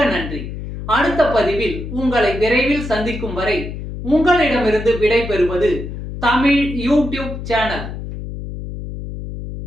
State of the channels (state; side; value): noise; left; hum, 8 dB below the sound